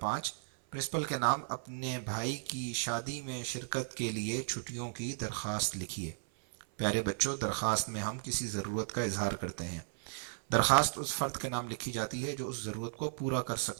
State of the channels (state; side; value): silent; left; 54 dB below the other